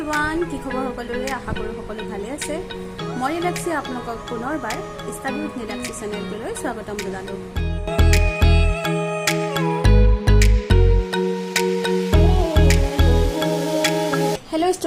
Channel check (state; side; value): identical; both; correlation 1.00